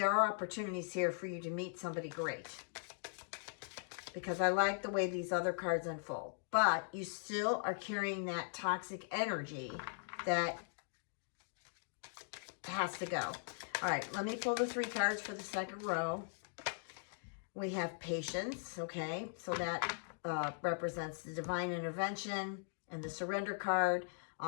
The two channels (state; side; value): silent; right; digital silence